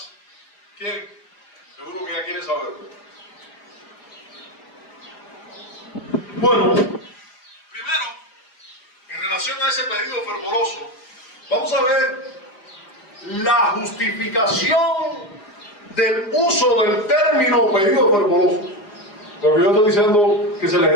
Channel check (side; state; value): right; late; 4.9 ms